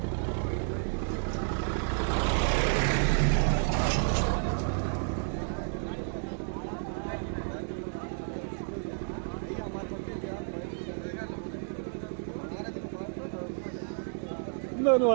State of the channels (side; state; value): left; silent; 57 dB below the other